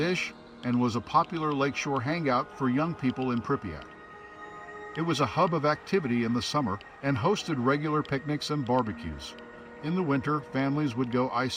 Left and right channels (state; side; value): identical; both; correlation 1.00